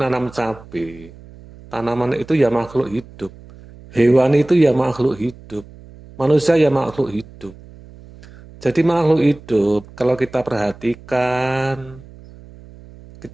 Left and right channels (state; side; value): noise; right; hum, 20 dB below the sound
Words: cabai. Tanaman itu ya makhluk hidup. Hewan itu ya makhluk hidup. Manusia ya makhluk hidup. Jadi makhluk hidup, kalau kita perhatikan,